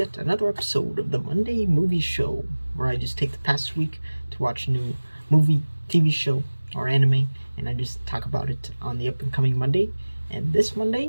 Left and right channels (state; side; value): inverted; both; correlation -1.00